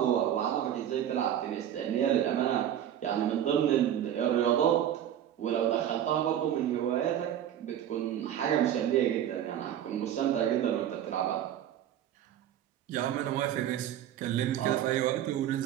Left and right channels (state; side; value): quieter; left; 10.7 dB